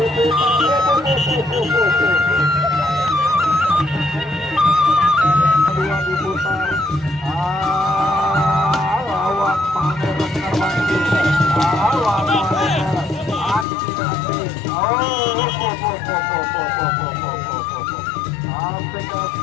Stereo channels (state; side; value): drops out; right; at 13.7 s